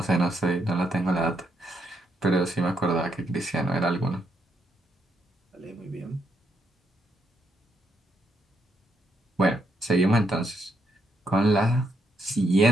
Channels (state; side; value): normal; both; correlation 0.77